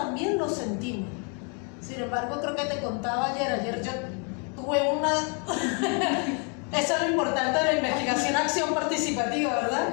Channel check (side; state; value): right; quieter; 37.1 dB